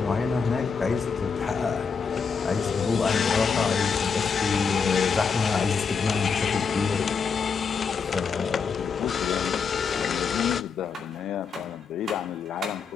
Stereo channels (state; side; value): quieter; right; 5.7 dB